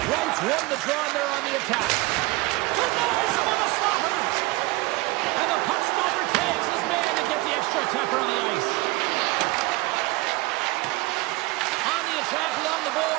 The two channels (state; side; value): quieter; left; 21.8 dB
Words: Wright's won the draw there on the attack. Denies him on the slapper. And the puck stopper tags his man to get the extra attacker on the ice. On the attack along the